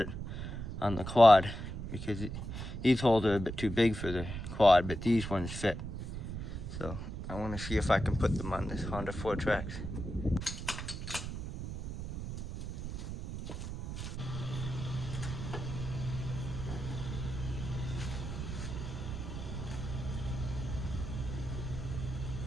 on the quad because these holes are a bit too big for the quad, but these ones fit. So I want to see if I can put them on this Honda 4Trax.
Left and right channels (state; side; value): noise; right; rumble, 6 dB below the sound